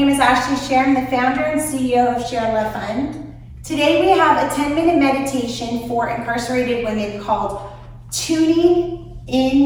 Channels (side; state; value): both; identical; correlation 1.00